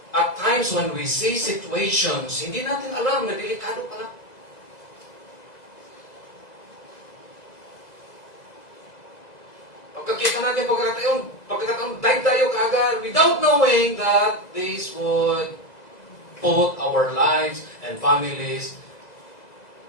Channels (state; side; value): late; right; 2.0 ms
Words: at times when we see situations, hindi natin alam na delikado pala. Pagkakita natin pagkakataon, dive tayo kaagad without knowing that this would put our lives and families